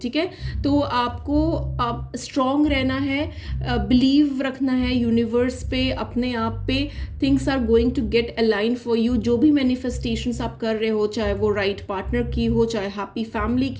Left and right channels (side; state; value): both; identical; correlation 1.00